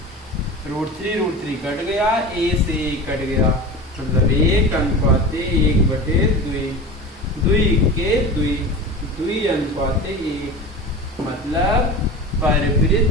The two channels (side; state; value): both; normal; correlation 0.31